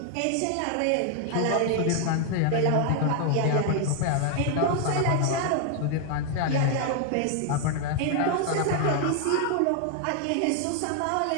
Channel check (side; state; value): both; different; correlation 0.00